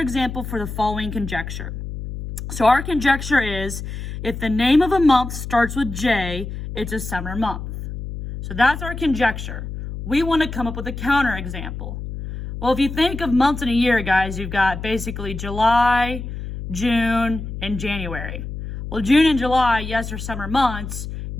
for the following conjecture. So our conjecture is, if the name of a month starts with J, it's a summer month. So that's our conjecture. We want to come up with a counterexample. Well, if you think of months in a year, guys, you've got basically July, June, and January. Well, June and July, yes, are summer months.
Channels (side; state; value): left; noise; hum, 8 dB below the sound